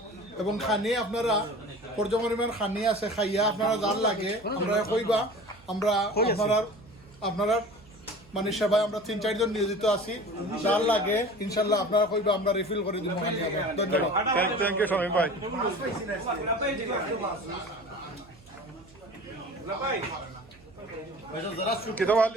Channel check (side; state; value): right; noise; hum, 25 dB below the sound